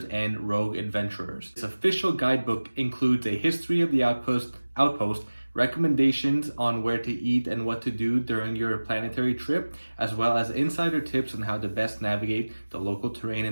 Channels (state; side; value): inverted; both; correlation -1.00